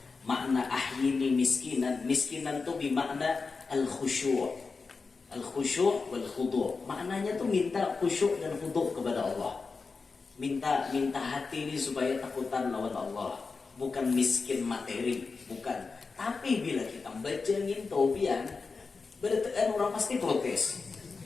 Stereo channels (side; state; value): right; quieter; 4.5 dB